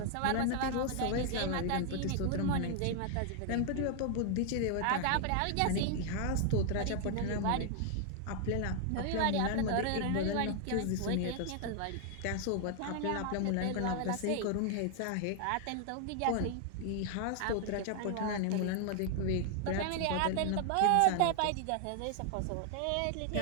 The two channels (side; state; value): both; different; correlation 0.00